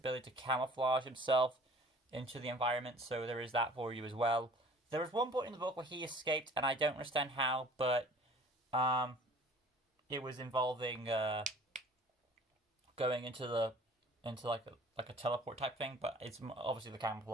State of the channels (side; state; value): both; normal; correlation 0.49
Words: to camouflage himself into the environment, so there is that for you as well. there was one point in the book where he escaped, and I don't understand how, but it was involving going into like a teleport type thing, but it's obviously the